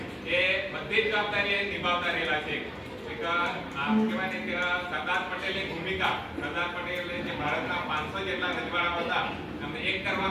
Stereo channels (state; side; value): identical; both; correlation 1.00